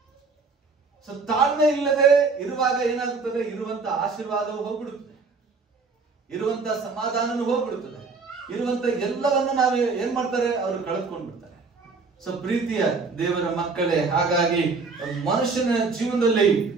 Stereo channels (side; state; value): left; quieter; 4.4 dB